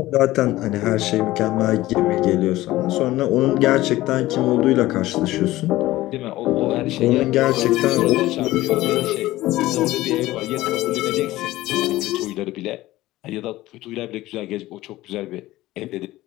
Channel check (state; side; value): quieter; right; 16.9 dB